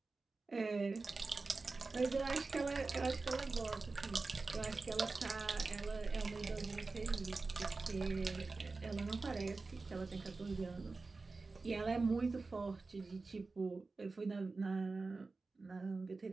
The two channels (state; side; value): quieter; left; 3.8 dB